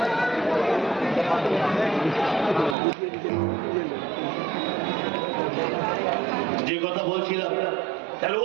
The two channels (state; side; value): drops out; left; at 2.8 s